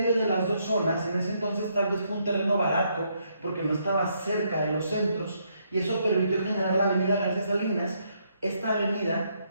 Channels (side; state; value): both; inverted; correlation -0.74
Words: de las dos zonas. En ese entonces tal vez fue un terreno barato, porque no estaba cerca de los centros, y eso permitió generar la avenida García Salinas. Esta avenida